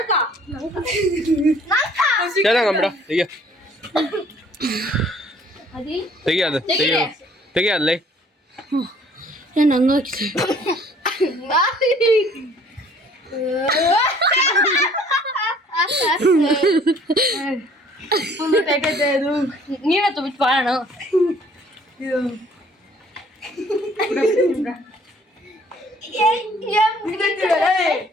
ಚೆನ್ನಾಗಂಬಿಡ ತೆಗಿಯೋದು ತೆಗಿಯೋದ್ಲೈ ನಾನು ಹಂಗಾಕಿ ನೀನೇ ತುಂಬಿಟ್ಟು ಬಾಳಣ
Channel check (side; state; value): both; normal; correlation 0.57